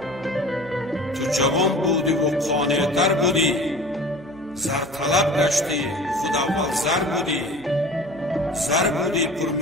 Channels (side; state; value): right; noise; hum, 22 dB below the sound